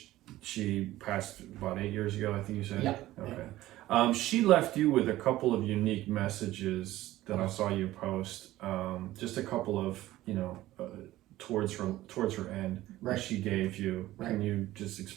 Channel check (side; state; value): left; quieter; 15.8 dB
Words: she passed about 8 years ago, I think you said. Yeah. Okay. She left you with a couple of unique messages that I saw you post. Just a couple of towards her end that she gave you. Right. Can you just